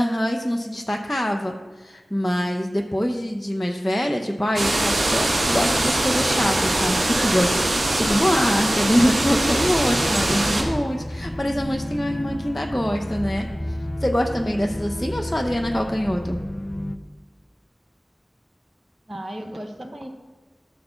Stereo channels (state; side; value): normal; both; correlation 0.97